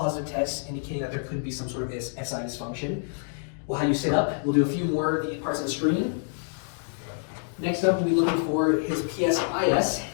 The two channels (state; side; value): silent; right; digital silence